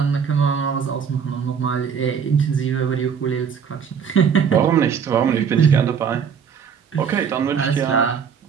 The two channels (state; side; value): quieter; left; 7.1 dB